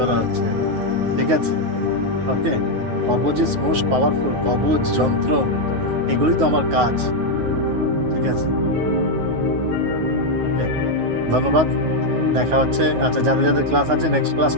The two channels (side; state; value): left; late; 9.4 ms